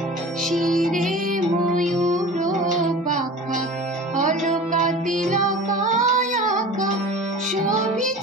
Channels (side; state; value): both; normal; correlation 0.37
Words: শিরে ময়ূর পাখা অলকা তিলকায় আঁকা,